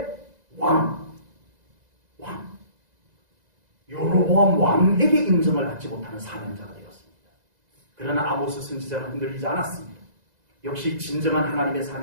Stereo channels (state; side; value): late; left; 2.0 ms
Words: 왕 여로보암 왕에게 인정을 받지 못하는 사명자가 되었습니다. 그러나 아모스 선지자는 흔들리지 않았습니다. 역시 진정한 하나님의